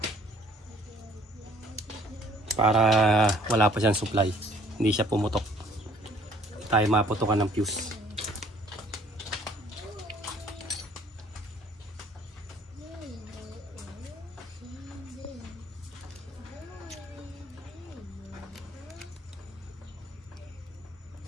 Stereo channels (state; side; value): normal; both; correlation 0.57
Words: Para wala pa siyang supply. Hindi siya pumutok. Tayo maputokan ng fuse.